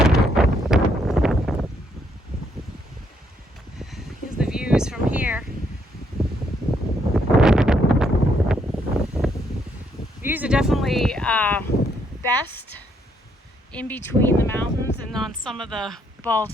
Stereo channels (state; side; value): normal; both; correlation 0.72